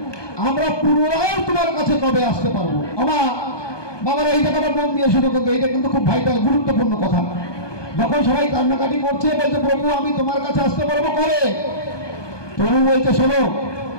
আমরা পুনরায় তোমার কাছে কবে আসতে পারবো। আমার বাবারা এই জায়গাটা মন দিয়ে শুরু করতো, এটা কিন্তু খুব ভাইটাল গুরুত্বপূর্ণ কথা। যখন সবাই কান্নাকাটি করছে, বলছে প্রভু আমি তোমার কাছে আসতে পারবো কবে? প্রভু বলছে শোনো,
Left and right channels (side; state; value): right; late; 1.2 ms